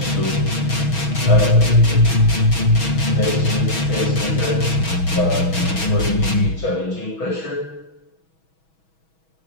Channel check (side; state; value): right; late; 6.2 ms